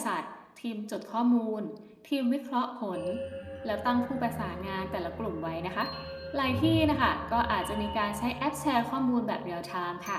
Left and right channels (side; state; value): both; identical; correlation 1.00